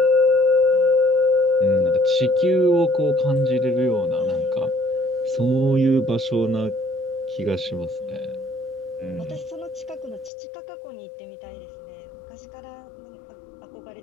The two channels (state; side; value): drops out; right; at 10.3 s